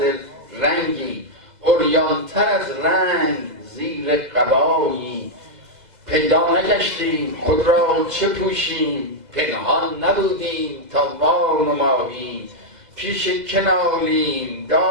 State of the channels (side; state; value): left; late; 2.0 ms